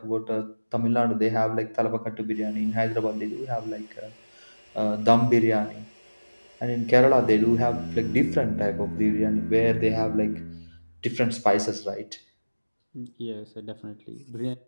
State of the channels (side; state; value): both; inverted; correlation -1.00